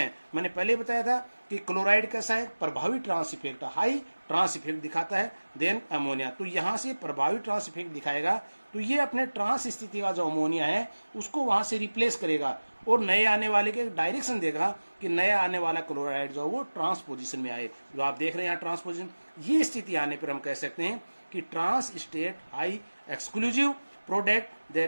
मैंने पहले बताया था कि क्लोराइड कैसा है, प्रभावी trans effect, high trans effect दिखाता है। देन अमोनिया, तो यहाँ से प्रभावी ट्रांस इफेक्ट दिखाएगा, तो ये अपने ट्रांस स्थिति का जो अमोनिया है उसको वहां से रिप्लेस करेगा और नए आने वाले के डायरेक्शन देगा कि नया आने वाला क्लोराइड जो वो ट्रांस पोजिशन में आए। जो आप देख रहे हैं यहाँ ट्रांस पोजिशन, ये स्थिति आने पर हम कह सकते हैं कि trance state high exclusive product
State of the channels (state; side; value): inverted; both; correlation -1.00